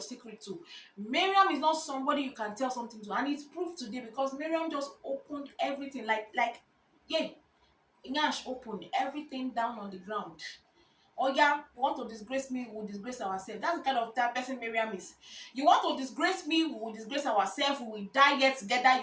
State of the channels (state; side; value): identical; both; correlation 1.00